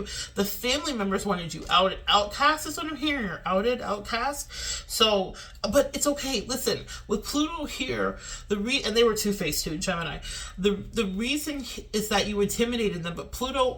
The family members wanted you outed. Outcast is what I'm hearing, or outed, outcast. So, but it's okay. Listen, with Pluto here, and they were two-faced too, Gemini. The reason is that you intimidated them, but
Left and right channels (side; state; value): both; identical; correlation 1.00